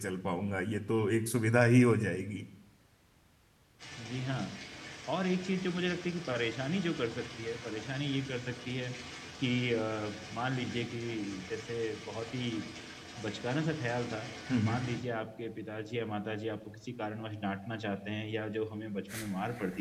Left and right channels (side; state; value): both; identical; correlation 1.00